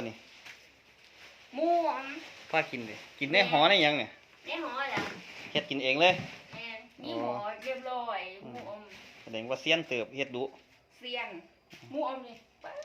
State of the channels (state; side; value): identical; both; correlation 1.00